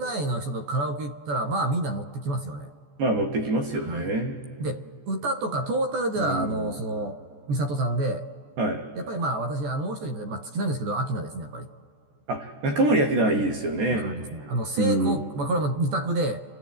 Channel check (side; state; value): left; late; 14 ms